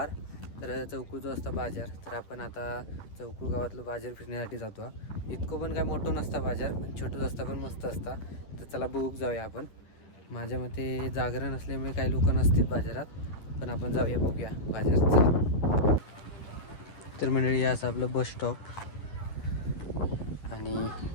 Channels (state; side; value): late; right; 10 ms